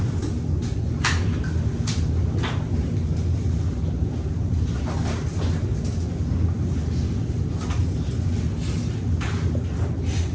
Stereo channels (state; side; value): identical; both; correlation 1.00